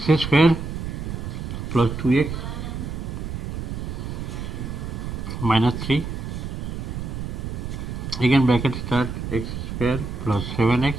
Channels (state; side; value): noise; right; rumble, 5 dB below the sound